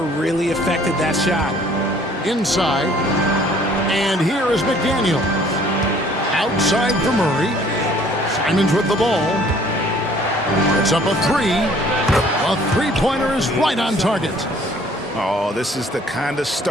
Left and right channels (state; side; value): normal; both; correlation 0.56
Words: affected that shot. Inside. And here is McDaniel. Outside for Murray. Simons with the ball. It's up a three. A three-pointer is right on target. Oh, this is the kind of